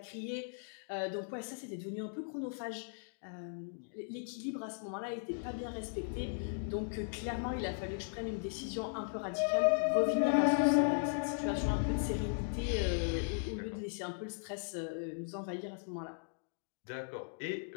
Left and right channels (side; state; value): right; silent; digital silence